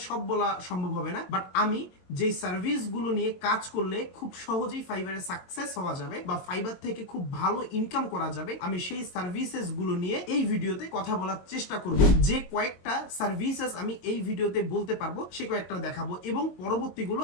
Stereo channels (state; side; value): late; right; 22 ms